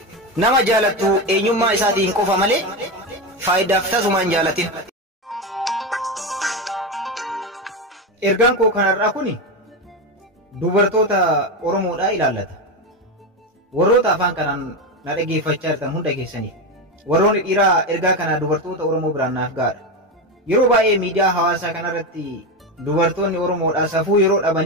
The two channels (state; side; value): normal; both; correlation 0.15